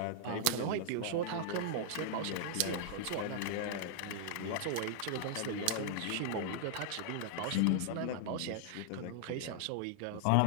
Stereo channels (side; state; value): both; different; correlation 0.00